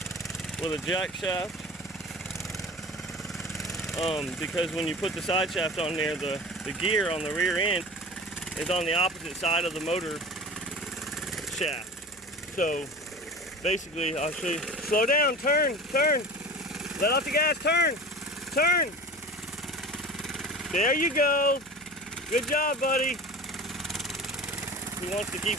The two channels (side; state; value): left; noise; hum, 29 dB below the sound